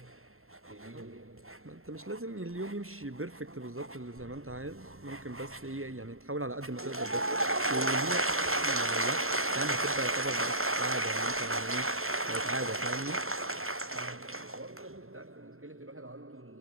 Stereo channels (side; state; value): left; late; 0.62 ms